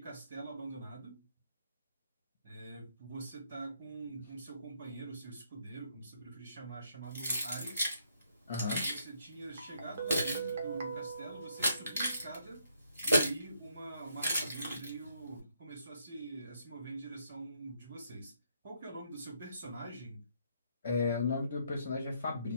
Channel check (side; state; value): both; inverted; correlation -0.73